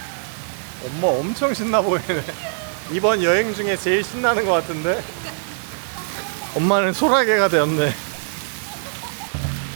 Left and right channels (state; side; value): silent; left; digital silence